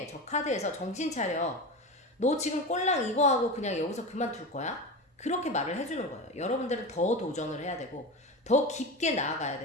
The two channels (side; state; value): both; normal; correlation 0.25